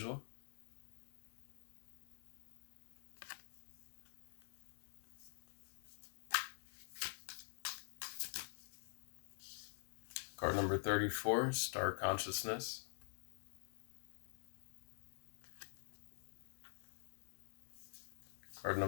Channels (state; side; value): silent; right; digital silence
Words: Card number 34, Star Consciousness. Card